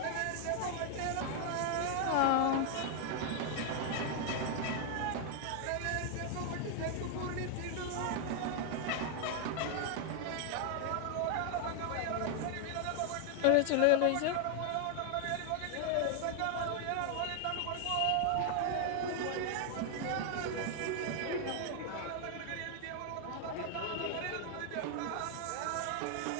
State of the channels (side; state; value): both; different; correlation 0.00